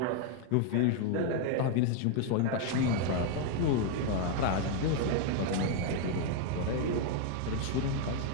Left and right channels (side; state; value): both; different; correlation 0.00